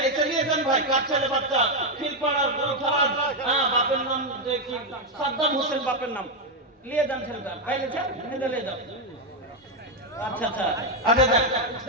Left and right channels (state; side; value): normal; both; correlation 0.03